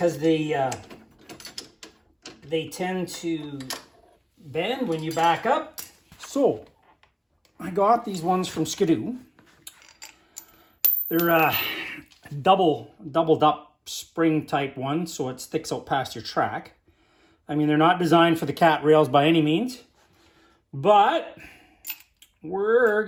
they tend to bend when you back up. So I got these ones from Skidoo. They're doubled up spring type one, so it sticks out past your track. I mean, they're not designed for the cat rails by any means, but we're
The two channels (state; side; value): identical; both; correlation 1.00